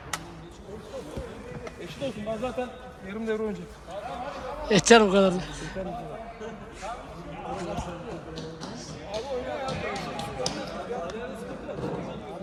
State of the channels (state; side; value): identical; both; correlation 1.00